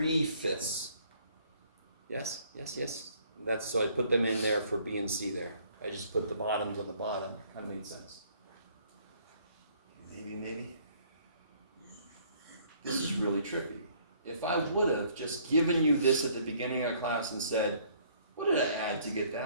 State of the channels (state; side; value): inverted; both; correlation -0.61